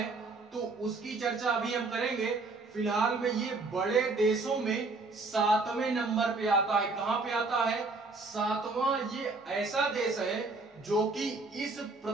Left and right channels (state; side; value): quieter; left; 3.6 dB